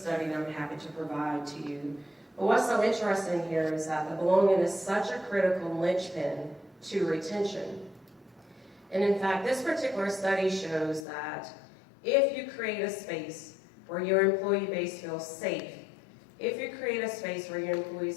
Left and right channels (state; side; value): drops out; right; at 11.1 s